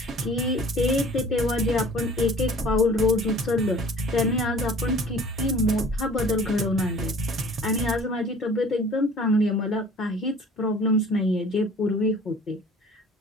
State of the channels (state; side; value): normal; both; correlation 0.48